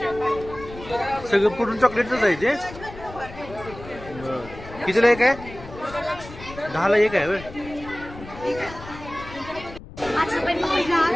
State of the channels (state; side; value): noise; left; rumble, 15 dB below the sound